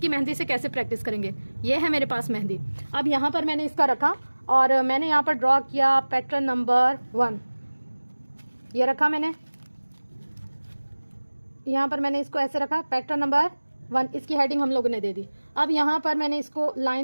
मेहंदी से कैसे प्रैक्टिस करेंगे। ये है मेरे पास मेहंदी। अब यहाँ पर मैंने इसका रखा और मैंने यहाँ पर ड्रॉ किया पैटर्न नंबर 1, ये रखा मैंने, यहाँ पर मैंने इसको ऐसे रखा, पैटर्न नंबर 1, इसकी हेडिंग हम लोगों ने दे दी। अब यहाँ पर मैंने इसको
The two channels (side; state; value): both; inverted; correlation -1.00